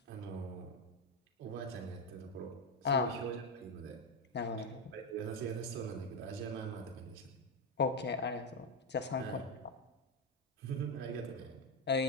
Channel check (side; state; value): both; normal; correlation 0.07